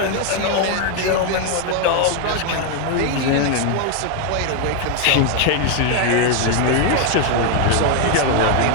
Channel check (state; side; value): different; both; correlation 0.01